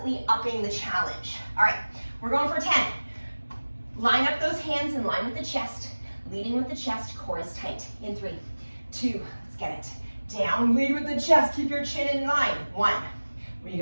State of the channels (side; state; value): both; inverted; correlation -1.00